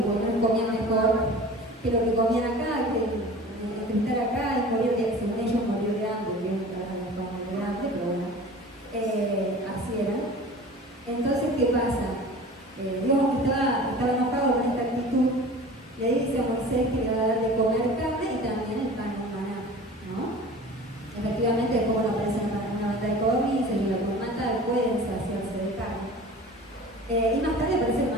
comían mejor que lo que comían acá, que estar acá y morir de, según ellos, morir de hambre, pero bueno, así era. Entonces, ¿qué pasa? Dios estaba enojado con esta actitud, le dice a Moisés que le va a dar de comer carne y también el pan de maná, ¿no? Efectivamente, después cuando aparece una banda de codornices y lo que mata, pueden saciarse de carne. Y más tarde aparece el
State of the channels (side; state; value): both; normal; correlation 0.40